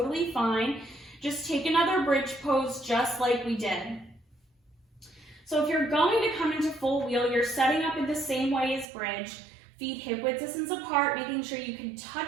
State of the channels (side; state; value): left; drops out; at 8.9 s